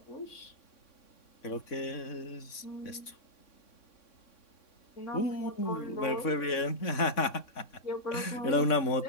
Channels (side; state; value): right; late; 3.6 ms